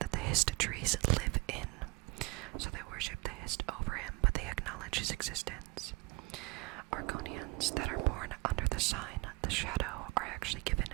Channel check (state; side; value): quieter; left; 24.7 dB